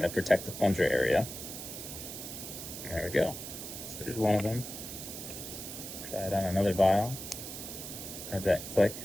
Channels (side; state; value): right; noise; hiss, 9 dB below the sound